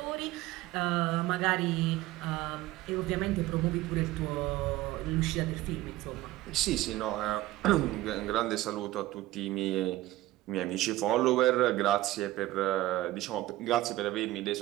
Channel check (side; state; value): left; quieter; 16.6 dB